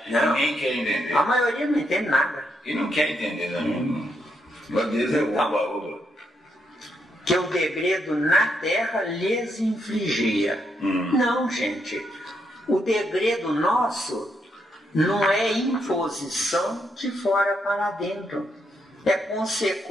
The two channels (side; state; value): both; normal; correlation 0.78